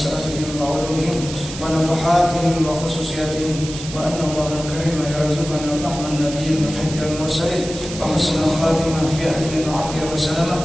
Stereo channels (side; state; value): right; noise; hiss, 11 dB below the sound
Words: وعلومهم ونفحاتهم وخصوصياتهم وأن الله الكريم يرزقنا فهم النبي وحج المرسلين وحسن الخاتمة في أهل وعافية وسلامة